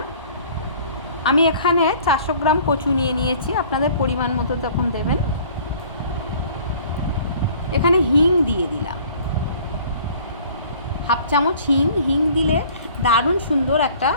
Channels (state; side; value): inverted; both; correlation -0.51